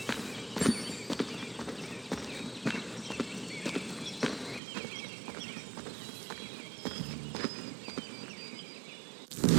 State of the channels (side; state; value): left; drops out; at 4.6 s